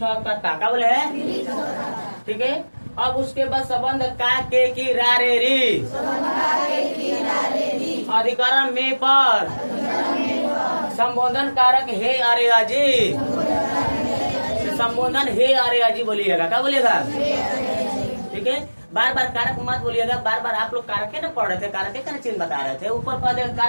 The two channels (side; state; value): both; inverted; correlation -1.00